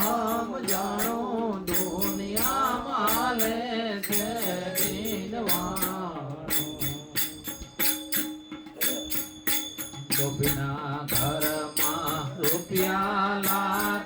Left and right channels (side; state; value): both; identical; correlation 1.00